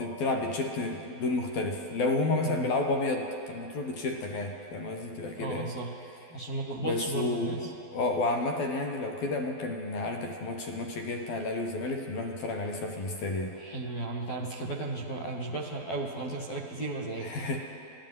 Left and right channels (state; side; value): late; right; 12 ms